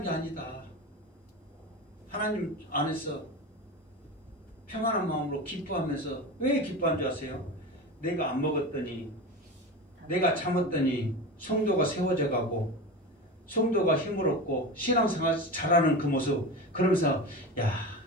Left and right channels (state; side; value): normal; both; correlation 0.26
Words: 게 아니다. 하나님 안에서 평안한 마음으로 기뻐하면서 왜 기뻐한 줄 아세요? 내가 안 먹었더니 내가 참았더니 성도가 세워져 가고 성도가 힘을 얻고 신앙생활 잘하는 그 모습 그러면서 야